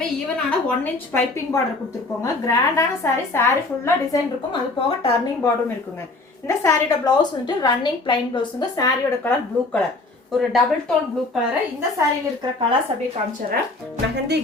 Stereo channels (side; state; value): right; quieter; 3.2 dB